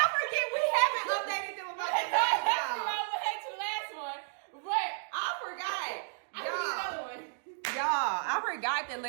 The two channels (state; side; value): silent; left; digital silence